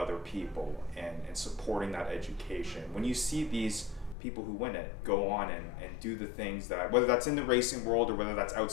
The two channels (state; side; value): drops out; right; at 4.2 s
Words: people and supporting that education. When you see these people who win it go on and do the things that, whether that's in the racing world or whether that's